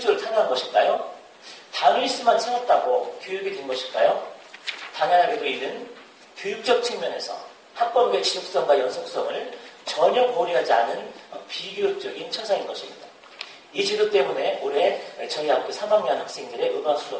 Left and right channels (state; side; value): identical; both; correlation 1.00